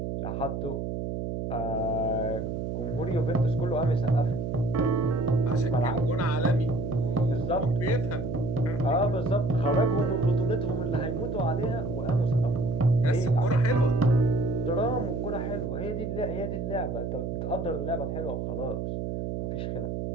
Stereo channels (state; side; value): noise; right; hum, 3 dB below the sound